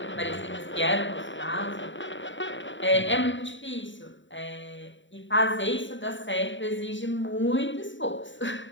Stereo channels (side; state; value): right; late; 0.54 ms